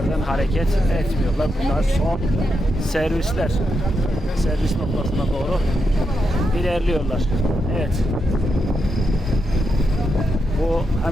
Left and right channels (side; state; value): both; normal; correlation 0.84